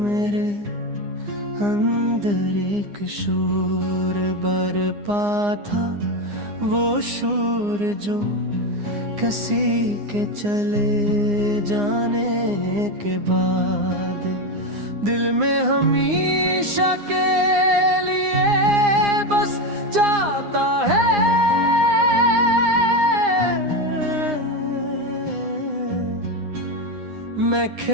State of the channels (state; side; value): late; left; 9.8 ms